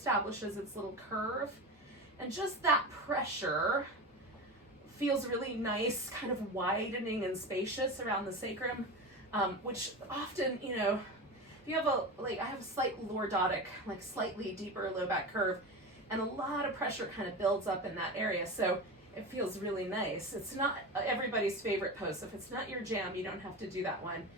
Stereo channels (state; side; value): normal; both; correlation 0.25